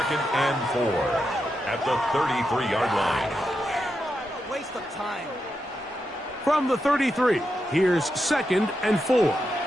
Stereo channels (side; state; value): both; normal; correlation 0.86